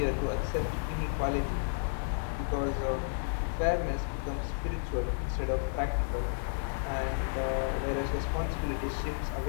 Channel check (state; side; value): silent; right; digital silence